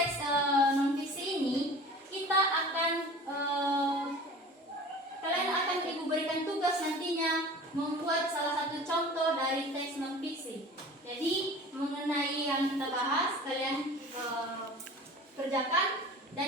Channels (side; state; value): both; normal; correlation 0.41